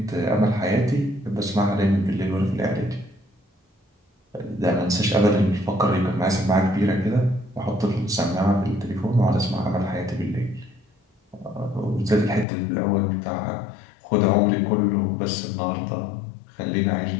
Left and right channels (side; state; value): right; drops out; at 12.5 s